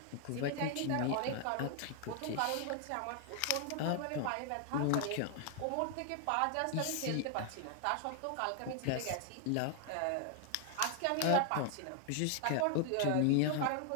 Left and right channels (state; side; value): different; both; correlation 0.00